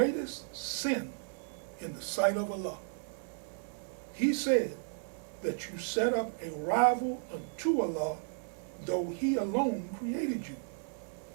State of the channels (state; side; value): silent; left; 55 dB below the other